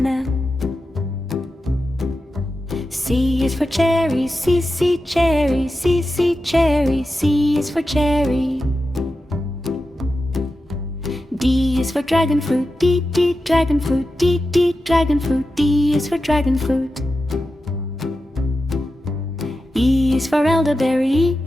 C is for cherry, C, cherry, C, cherry. C is for cherry. D is for dragon fruit, D, dragon fruit, D, dragon fruit. D is for dragon fruit. E is for elderberry,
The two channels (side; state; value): both; normal; correlation 0.91